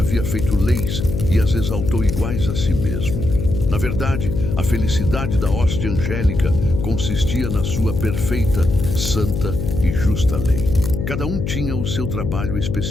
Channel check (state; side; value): noise; left; hum, 3 dB below the sound